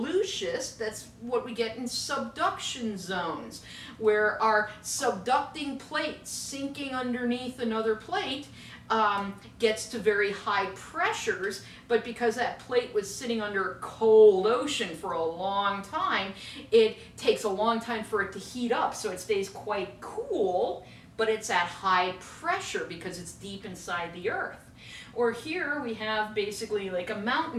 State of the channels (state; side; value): identical; both; correlation 1.00